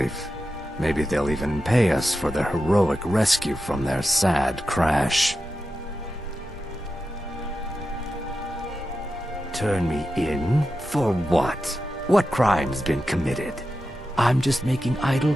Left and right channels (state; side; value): normal; both; correlation 0.90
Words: Maybe they'll even pay us for their heroic rescue from their sad crash. Turn me in? For what? What crime's been committed? I'm just making idle